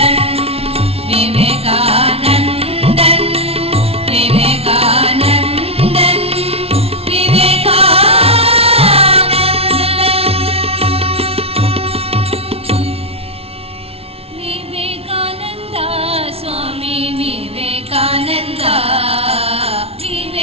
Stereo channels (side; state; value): left; late; 0.29 ms